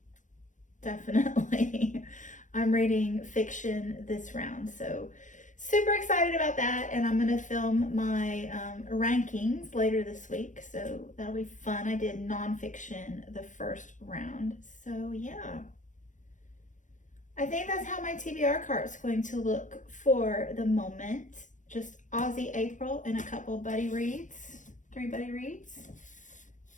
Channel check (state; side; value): late; right; 0.36 ms